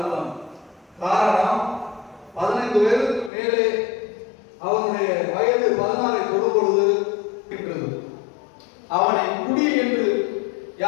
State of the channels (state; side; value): drops out; right; at 3.3 s